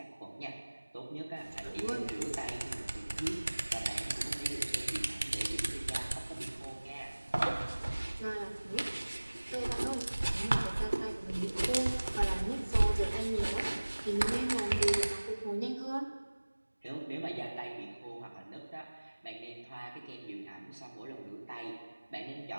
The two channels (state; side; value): inverted; both; correlation -1.00